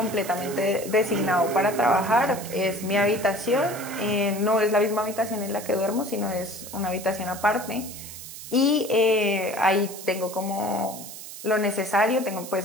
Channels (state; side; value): noise; right; hiss, 12 dB below the sound